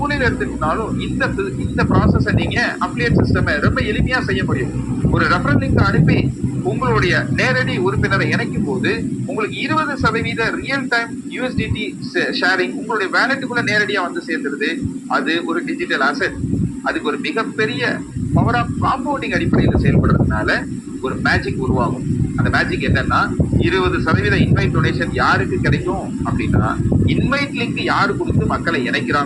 எடுத்துக்கிட்டாலும் இந்த ப்ராசஸை நீங்க அப்ளியேட் சிஸ்டம் ரொம்ப எளிமையா செய்ய முடியும். ஒரு ரெஃபரல் லிங்க் அனுப்பி உங்களுடைய நேரடி உறுப்பினரை இணைக்கும் போது உங்களுக்கு 20% ரியல் டைம் யூஎஸ்டிடி ஷேரிங் உங்களுடைய வேலெட்டுக்குள்ள நேரடியா வந்து சேர்ந்துருது. அது ஒரு டிஜிட்டல் அசெட். அதுக்கு ஒரு மிகப்பெரிய பவர் ஆஃப் காம்பவுண்டிங் அடிப்படையில் செயல்படுறதுனால ஒரு மேஜிக் உருவாகும். அந்த மேஜிக் என்னன்னா 20% இன்வைட் டொனேஷன் யாருக்கு கிடைக்கும் அப்படின்னா இன்வைட் லிங்க் யாரு கொடுத்து மக்களை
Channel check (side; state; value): both; identical; correlation 1.00